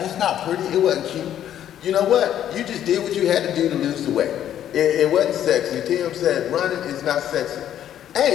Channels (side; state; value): right; quieter; 10.8 dB